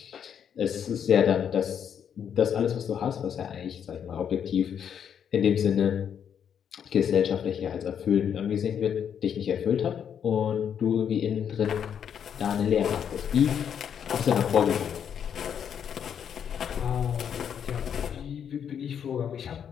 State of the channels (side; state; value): right; quieter; 8.3 dB